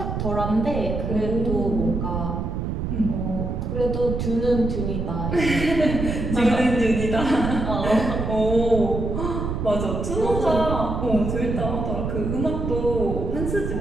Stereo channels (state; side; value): noise; right; rumble, 3 dB below the sound